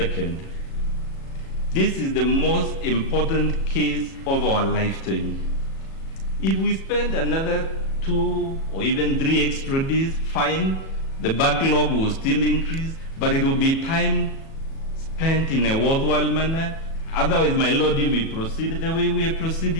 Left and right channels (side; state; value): right; late; 37 ms